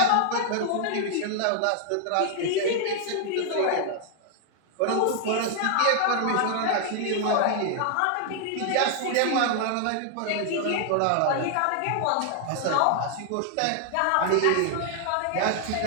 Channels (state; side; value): different; both; correlation -0.01